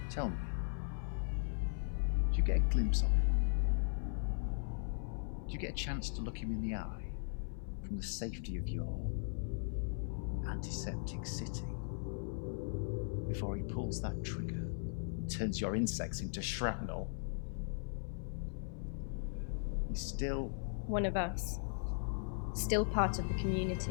Tell me, did you get a glimpse of him? Did you get a chance to look him in the eye from the safety of your antiseptic city before he pulls that trigger and turns your insects into shrapnel? He's still One of us. Still part of the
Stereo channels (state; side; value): silent; right; 52 dB below the other